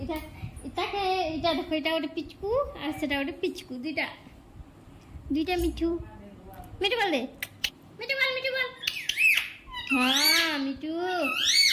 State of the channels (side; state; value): both; identical; correlation 1.00